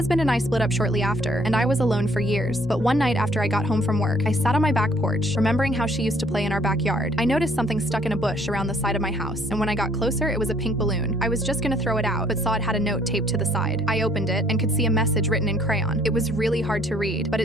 and I split up shortly after, and I was alone for years. But one night after I got home from work, I sat on my back porch, remembering how she used to play in our backyard. I noticed something stuck in a bush around the side of my house, and when I got closer, it was a pink balloon. I was just gonna throw it out, but saw it had a note taped to the side. I opened it and could see a message written in crayon. It was really hard to read, but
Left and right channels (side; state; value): both; normal; correlation 0.62